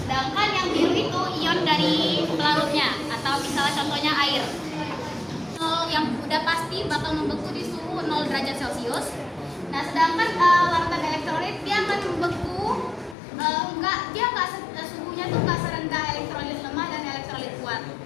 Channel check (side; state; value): right; drops out; at 13.2 s